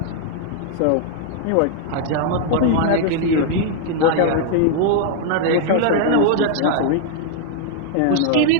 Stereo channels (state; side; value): different; both; correlation -0.01